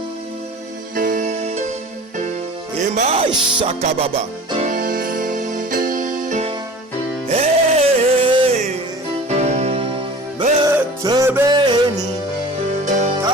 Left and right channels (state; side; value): normal; both; correlation 0.41